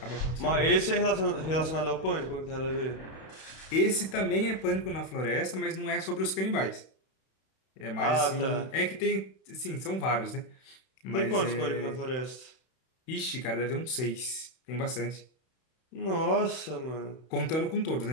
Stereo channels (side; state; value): right; late; 31 ms